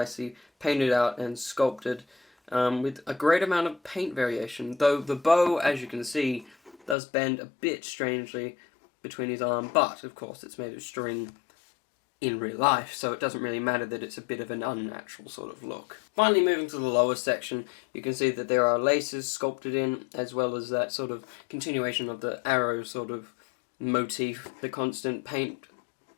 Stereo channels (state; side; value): drops out; right; at 7.0 s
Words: painted out and sculpted, with a great amount of paint variation, though the bow, as you can see, does bend a bit strangely between his arm, but of course it's made of string in real life, so it doesn't really matter that it's a bit of an unnatural sort of look. Finally, moving to the lower section, you can see that there are laces sculpted in, as well as that sort of continuation of the arrow sort of motif, the constant paint